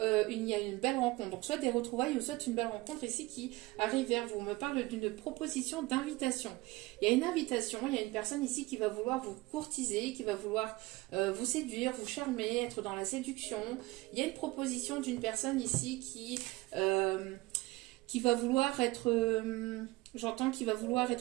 il y a une belle rencontre. Donc soit des retrouvailles ou soit une belle rencontre ici qui arrive vers vous. On me parle d'une proposition d'invitation. Il y a une invitation, il y a une personne ici qui va vouloir vous courtiser, qui va vouloir vous séduire, vous charmer, être dans la séduction. Il y a une proposition d'une personne ici qui va vouloir être... J'entends qu'il va vouloir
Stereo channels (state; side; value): quieter; left; 21.1 dB